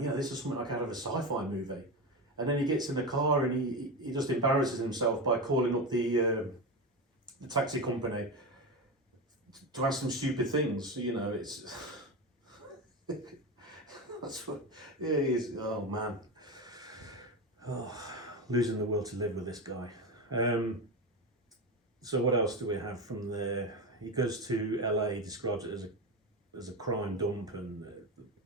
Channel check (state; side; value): normal; both; correlation 0.19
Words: yeah, this is something like out of a sci-fi movie. And then he gets in the car and he just embarrasses himself by calling up the taxi company to ask some stupid things. You know, it's that's what he is. Oh man, losing the will to live with this guy. So what else do we have from there? He goes to LA, he describes it as a crime dump and